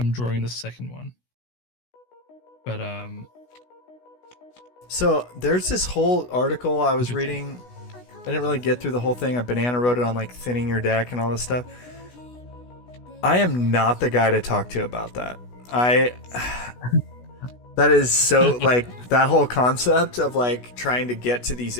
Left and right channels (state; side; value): late; right; 16 ms